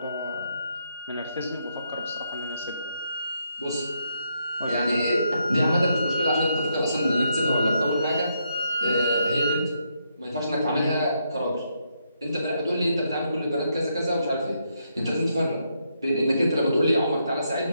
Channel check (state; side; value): inverted; both; correlation -0.78